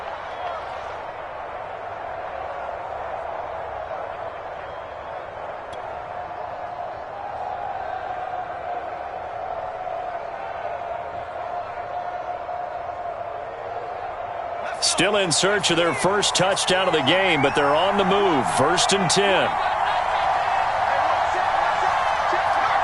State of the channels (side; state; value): both; identical; correlation 1.00